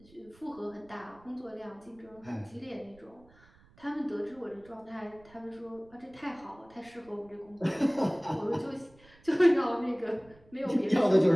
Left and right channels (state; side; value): noise; right; rumble, 27 dB below the sound